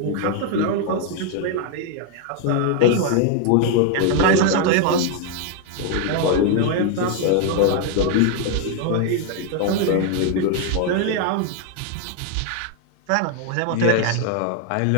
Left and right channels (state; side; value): different; both; correlation 0.01